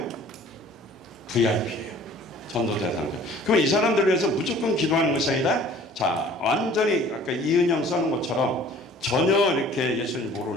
VIP예요. 전도 대상자. 그럼 이 사람들을 위해서 무조건 기도하는 것이 아니라 자, 완전히 아까 이은영 써는 것처럼 전혀 이렇게 예수님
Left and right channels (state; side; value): normal; both; correlation 0.50